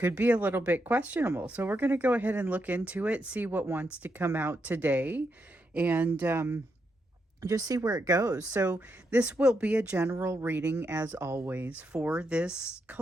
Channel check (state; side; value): normal; both; correlation 0.82